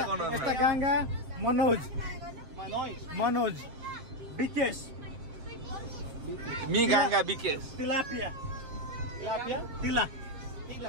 गर्नु Esta Ganga, Manoj, Manoy. Bikesh, मी गाङ्गा विकेश Tilapia, Tilapia. Tila,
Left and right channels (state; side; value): late; left; 7.6 ms